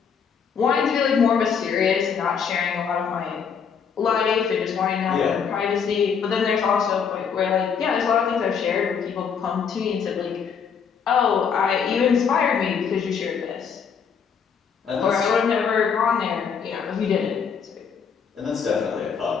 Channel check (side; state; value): right; quieter; 6.7 dB